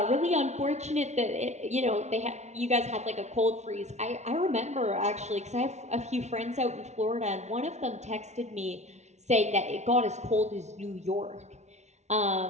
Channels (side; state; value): left; late; 0.32 ms